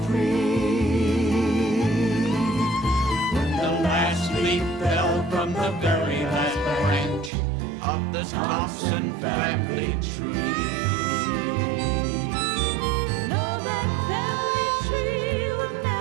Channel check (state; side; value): drops out; left; at 7.3 s